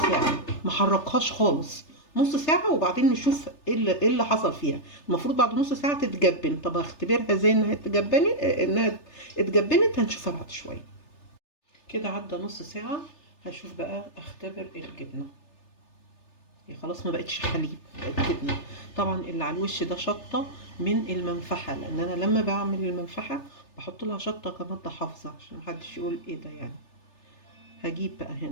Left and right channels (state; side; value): late; right; 3.3 ms